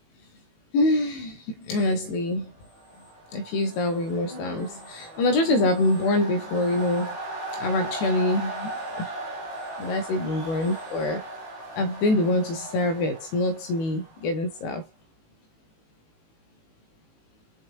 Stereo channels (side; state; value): right; late; 18 ms